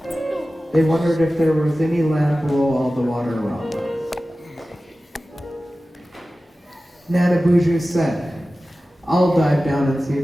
They wondered if there was any land below all the water around them. Nana Buju said, "I'll dive down and see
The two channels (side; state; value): both; normal; correlation 0.95